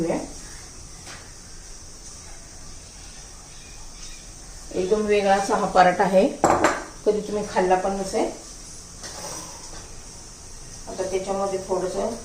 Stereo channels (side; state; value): both; identical; correlation 1.00